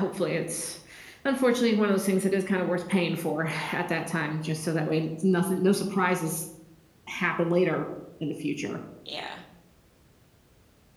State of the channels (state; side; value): identical; both; correlation 1.00